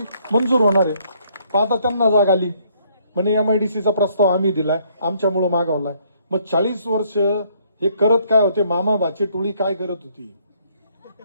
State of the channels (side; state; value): both; inverted; correlation -0.67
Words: मंजूर होणार आहे. पण आता त्यांना जाग आली म्हणे एमआयडीसीचा प्रस्ताव आम्ही दिलाय, आमच्यामुळे मागवलाय. मग 40 वर्ष हे करत काय होते, मामा भाची टोळी काय करत होती.